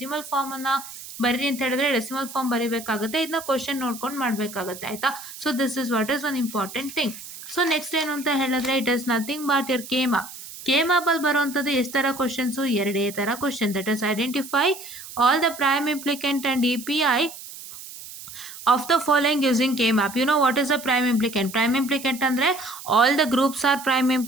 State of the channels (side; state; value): right; noise; hiss, 14 dB below the sound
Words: ಫಾರ್ಮ್ ಅನ್ನ ಬರೀ ಅಂತ ಹೇಳಿದ್ರೆ ಡೆಸಿಮಲ್ ಫಾರ್ಮ್ ಬರೀಬೇಕಾಗುತ್ತೆ. ಇದನ್ನ ಕ್ವಶನ್ ನೋಡ್ಕೊಂಡು ಮಾಡ್ಬೇಕಾಗತ್ತೆ. ಆಯ್ತಾ? So this is what is one important thing. So next ಏನು ಅಂತ ಹೇಳಿದ್ರೆ, it is nothing but your K-map ಅಲ್ಲಿ ಬರುವಂತದ್ದು ಎಷ್ಟು ತರ ಕ್ವಶನ್ಸ್, ಎರಡೇ ತರ question. That is identify all the prime implicant and EPI of the following using K-map. You know what is a prime implicant? Prime implicant andre all the groups are prime